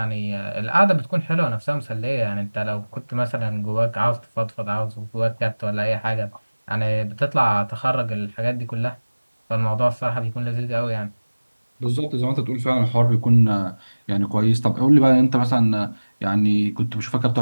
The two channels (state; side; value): inverted; both; correlation -1.00